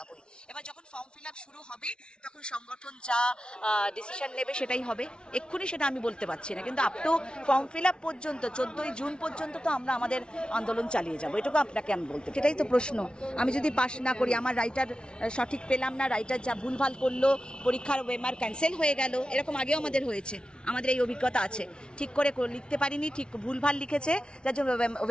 এবার যখন ফর্ম ফিল আপ শুরু হবে তখন সংগঠন যা ডিসিশন নেবে সেটাই হবে। এক্ষুনি সেটা আমি বলতে পারছি না, কিন্তু up to form fill up পর্যন্ত 14ই জুন পর্যন্ত তো আমরা আমাদের আন্দোলন চালিয়ে যাবো। এটুকু আপনাকে আমি বলতে, সেটাই তো প্রশ্ন। আমি যদি পাস না করি, আমার রাইটার সঠিক পেলাম না, রাইটার যা ভুলভাল করলো, পরীক্ষার ওয়েমার ক্যান্সেল হয়ে গেল, এরকম আগেও আমাদের হয়েছে, আমাদের এই অভিজ্ঞতা আছে। ঠিক করে লিখতে পারিনি, ঠিক ভুলভাল লিখেছে, যার জন্য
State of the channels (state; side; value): late; right; 0.056 ms